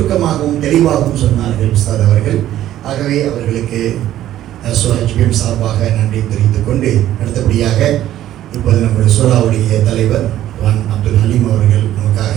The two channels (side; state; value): left; quieter; 12.8 dB